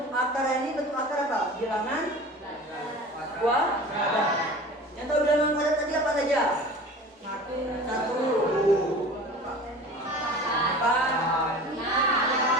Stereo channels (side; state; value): both; normal; correlation 0.39